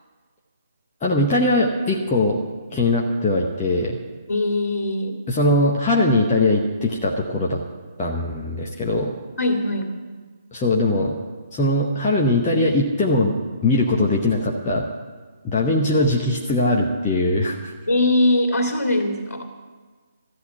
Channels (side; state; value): both; inverted; correlation -0.44